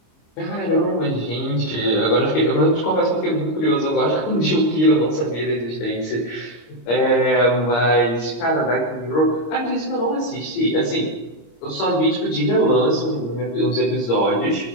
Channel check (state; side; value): late; right; 26 ms